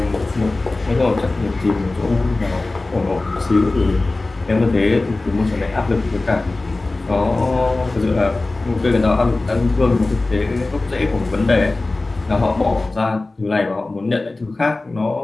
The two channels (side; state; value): right; quieter; 3.1 dB